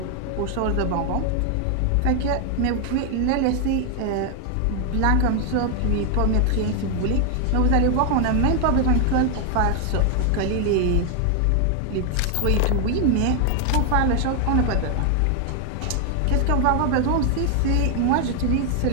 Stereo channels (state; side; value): different; both; correlation 0.00